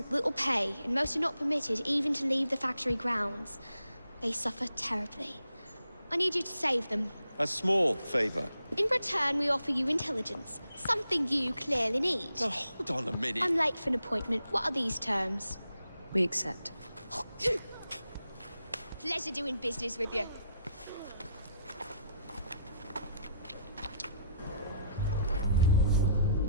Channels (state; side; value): inverted; both; correlation -0.74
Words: little pay, and most are not permitted even to leave the factory grounds. They suffer terribly. I need you to save them. A small favor. In return, we offer you intelligence, something you clearly need. Now, hold on a minute. I'm late for an appointment. What are these terms? We accept. Pleasure doing business with you.